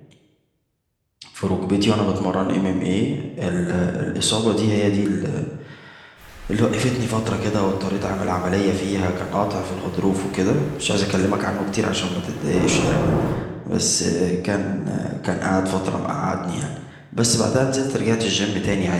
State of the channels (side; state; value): both; identical; correlation 1.00